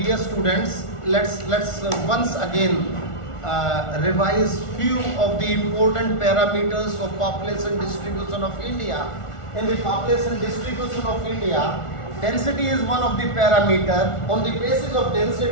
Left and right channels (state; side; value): late; right; 1.4 ms